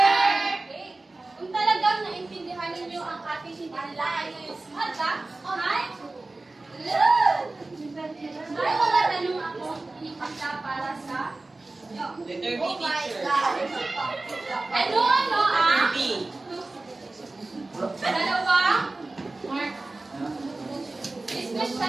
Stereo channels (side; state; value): left; quieter; 3.1 dB